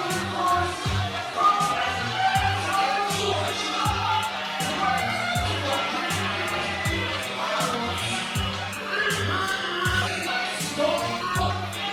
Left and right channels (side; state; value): both; identical; correlation 1.00